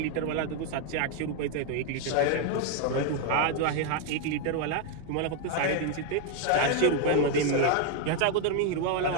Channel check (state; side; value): different; both; correlation 0.01